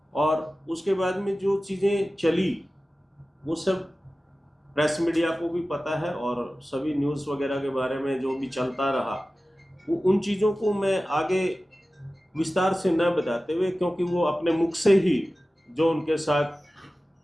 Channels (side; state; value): both; normal; correlation 0.96